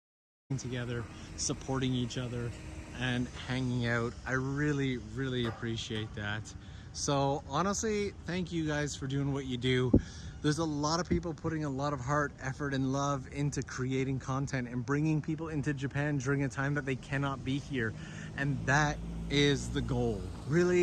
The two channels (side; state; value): both; identical; correlation 1.00